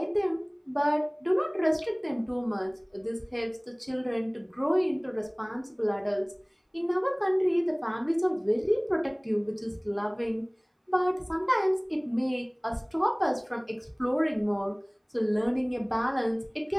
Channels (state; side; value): identical; both; correlation 1.00